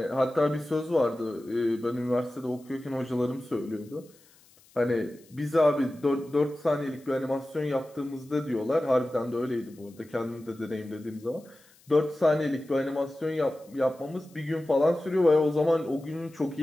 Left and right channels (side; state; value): left; noise; hiss, 28 dB below the sound